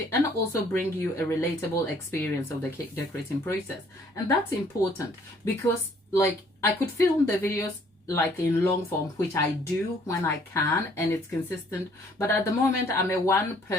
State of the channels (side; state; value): both; normal; correlation 0.61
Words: and also bring you a relatable experience of the cake decorating process. And that's important because, like, I could film the videos like in long form, which I do when I can, and it's consistent, but at the moment I'm a